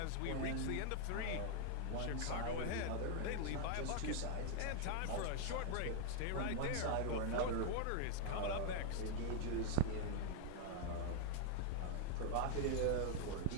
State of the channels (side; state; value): both; different; correlation 0.00